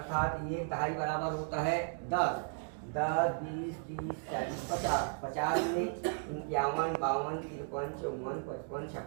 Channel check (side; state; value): left; silent; 54 dB below the other